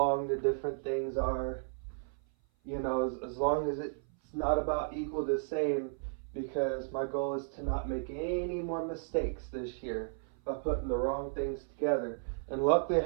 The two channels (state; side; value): silent; left; 55 dB below the other